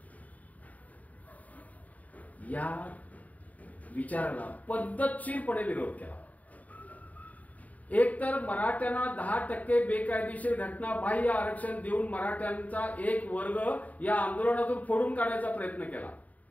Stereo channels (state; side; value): late; right; 0.072 ms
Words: या विचाराला पद्धतशीरपणे विरोध केला. एक तर मराठ्यांना 10% बेकायदेशीर घटना बाह्य आरक्षण देऊन मराठ्यांचा एक वर्ग या आंदोलनातून फोडून काढण्याचा प्रयत्न केला.